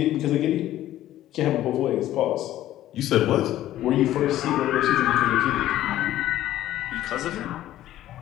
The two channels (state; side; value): quieter; right; 13.6 dB